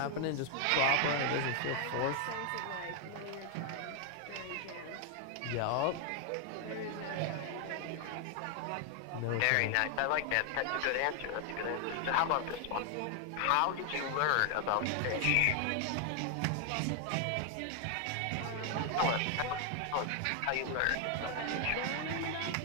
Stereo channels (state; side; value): different; both; correlation 0.00